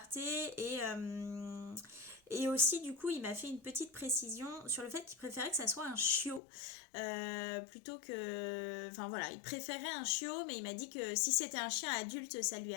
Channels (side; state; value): right; drops out; at 6.4 s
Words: et aussi, du coup, il m'a fait une petite précision sur le fait qu'il préférait que ça soit un chiot plutôt que... Enfin voilà, il préférait un chiot, mais il m'a dit que si c'était un chien adulte, ça lui